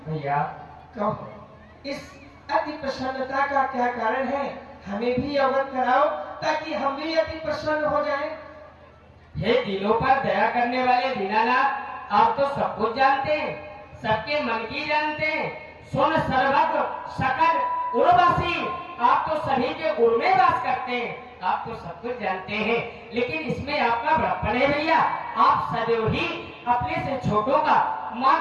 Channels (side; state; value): both; identical; correlation 1.00